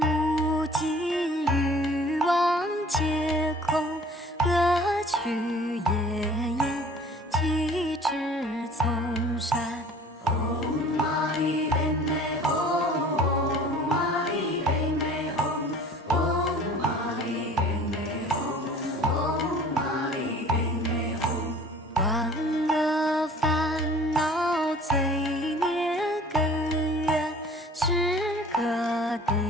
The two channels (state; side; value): normal; both; correlation 0.49